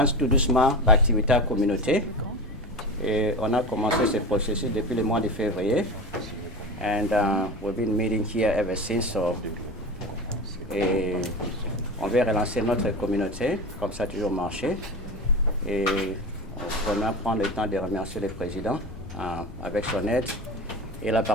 tout doucement l'activité à communauté. Et on a commencé ce processus depuis le mois de février. And we've been meeting here ever since. So, et on veut relancer notre communauté, comme ça a toujours marché. Et on va prendre le temps de remercier le président avec son aide et la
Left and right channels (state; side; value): normal; both; correlation 0.27